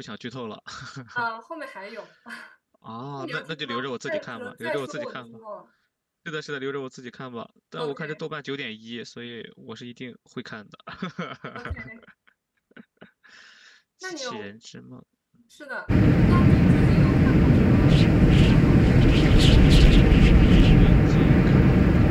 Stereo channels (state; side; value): identical; both; correlation 1.00